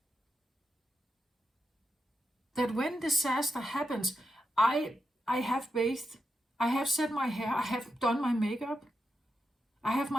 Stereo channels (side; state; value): both; normal; correlation 0.86